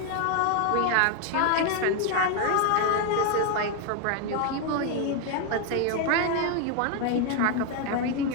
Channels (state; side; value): different; both; correlation 0.01